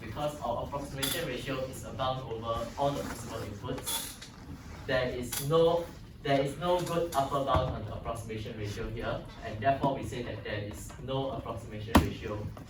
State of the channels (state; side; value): identical; both; correlation 1.00